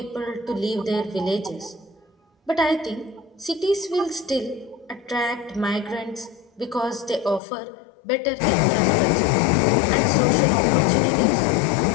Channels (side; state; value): right; drops out; at 7.4 s